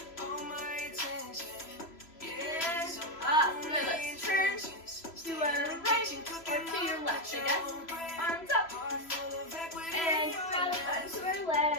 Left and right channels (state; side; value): late; right; 3.0 ms